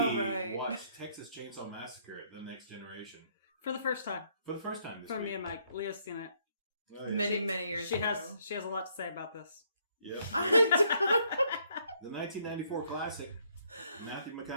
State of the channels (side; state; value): both; inverted; correlation -0.69